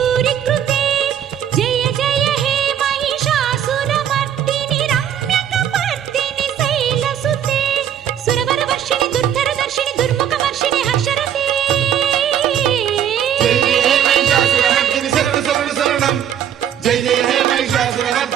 कृते जय जय हे महिषासुरमर्दिनि रम्यकपर्दिनि शैलसुते सुरवरवर्षिणि दुर्धरदर्शिनि दुर्मुखवर्षिणि हर्षरते जय जय हे महिषासुरमर्दिनि शरण शरण शरणं जय जय हे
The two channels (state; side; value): quieter; left; 9.7 dB